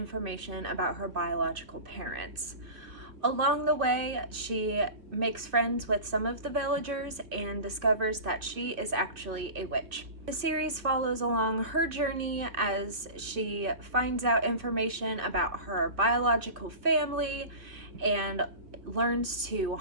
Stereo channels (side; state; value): left; late; 2.5 ms